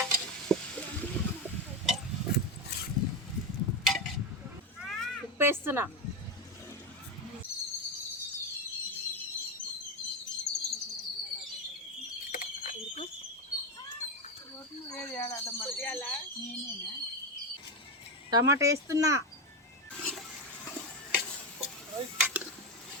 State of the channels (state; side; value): normal; both; correlation 0.13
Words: ఉప్పు వేస్తున్నా. టమాటా వేస్తున్నా.